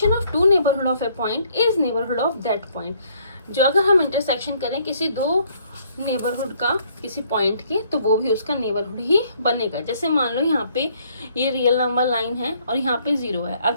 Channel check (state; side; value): inverted; both; correlation -0.65